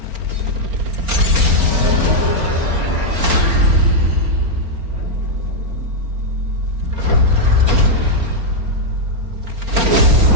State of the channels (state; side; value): late; left; 4.4 ms